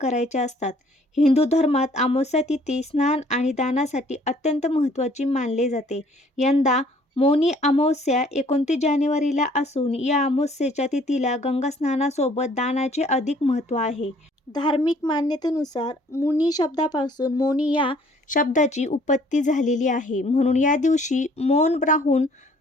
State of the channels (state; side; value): normal; both; correlation 0.58